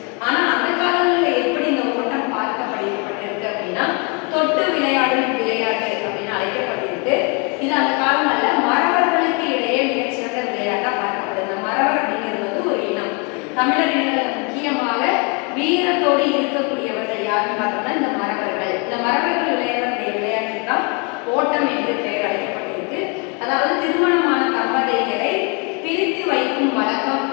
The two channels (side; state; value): right; quieter; 33.4 dB